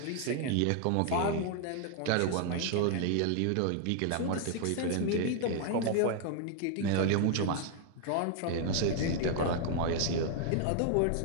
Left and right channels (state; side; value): different; both; correlation 0.00